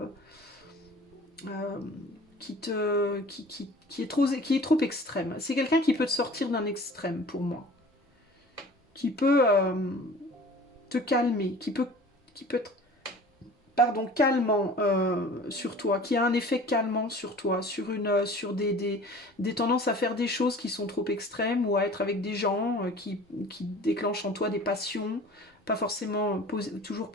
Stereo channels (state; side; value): normal; both; correlation 0.45